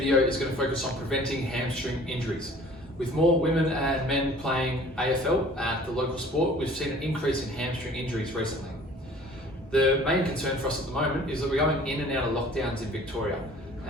is going to focus on preventing hamstring injuries. With more women and men playing AFL at the local sport, we've seen an increase in hamstring injuries recently. The main concern for us at the moment is that we're going in and out of lockdowns in Victoria.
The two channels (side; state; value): both; normal; correlation 0.50